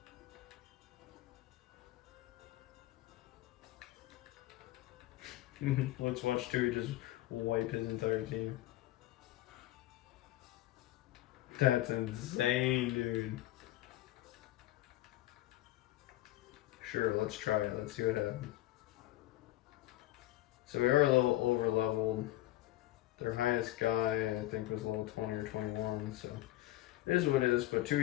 Let's watch Tui just wipe his entire team. That's insane, dude. Sure, let's try it. Let's see what happens. So we are a little over leveled. Their highest guy, I think, was level 20 or 21, so it is what it is. But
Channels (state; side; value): quieter; right; 16.0 dB